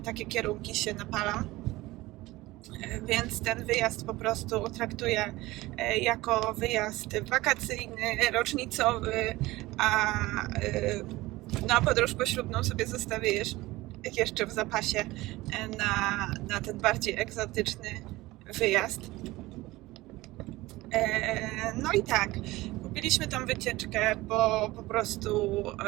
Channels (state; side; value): quieter; left; 19.2 dB